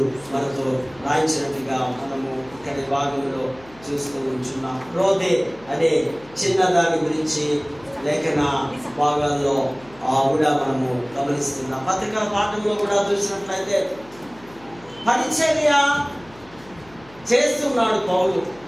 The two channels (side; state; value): left; noise; hum, 24 dB below the sound